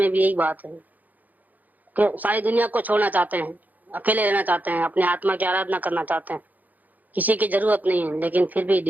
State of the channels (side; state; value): left; late; 0.081 ms